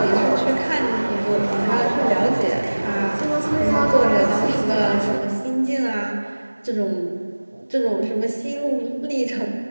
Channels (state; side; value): inverted; both; correlation -1.00